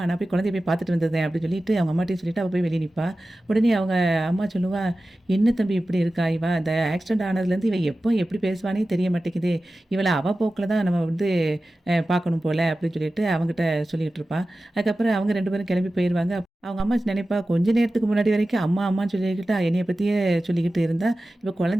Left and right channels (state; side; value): normal; both; correlation 0.95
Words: நான் போய் குழந்தைய போய் பார்த்துட்டு வந்துடுறேன்." அப்படி அவங்க அம்மாட்டயும் சொல்லிட்டு அவ போய் வெளிய நிப்பா. உடனே அவங்க அம்மா சொல்லுவா, "என்ன தம்பி இப்படி இருக்கா இவ? அந்த ஆக்சிடென்ட் ஆனதுலேருந்து இவ எப்போ எப்படி பேசுவான்னே தெரிய மாட்டேங்குது. இவள அவ போக்குல தான் நம்ம வந்து பார்க்கணும் போல." அப்படின்னு அவங்கிட்ட சொல்லிட்டு இருப்பா. அதுக்கப்புறம் அவங்க 2 பேரும் கிளம்பி போயிருவாங்க. அவங்க அம்மா நினைப்பா, கொஞ்ச நேரத்துக்கு முன்னாடி வரைக்கும் அம்மா அம்மான்னு சொல்லிக்கிட்டு என்னைய பத்தியே சொல்லிக்கிட்டு இருந்தா, இப்ப